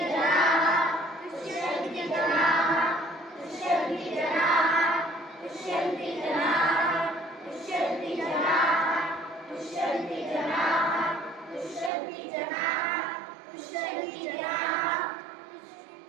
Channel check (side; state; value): left; drops out; at 11.9 s